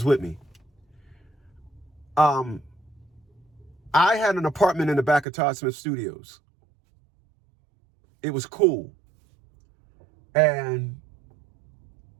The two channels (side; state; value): left; drops out; at 5.2 s